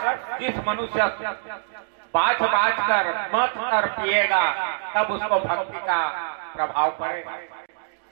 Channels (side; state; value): left; silent; digital silence